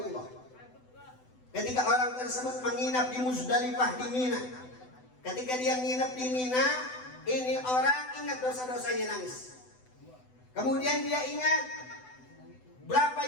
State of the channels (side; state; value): right; late; 7.9 ms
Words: Ketika orang tersebut menginap di Muzdalifah di Mina, ketika dia nginep di Mina, ini orang ingat dosa-dosanya, nangis. Kemudian dia ingat berapa